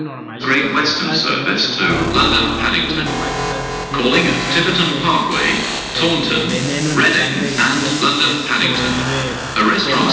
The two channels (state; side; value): identical; both; correlation 1.00